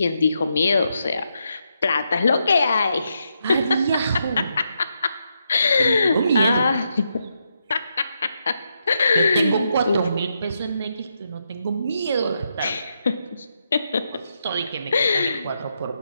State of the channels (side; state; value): both; inverted; correlation -0.82